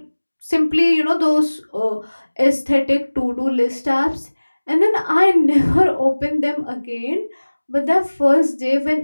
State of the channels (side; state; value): both; inverted; correlation -1.00